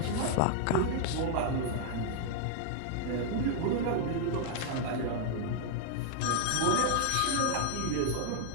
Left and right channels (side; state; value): both; different; correlation 0.00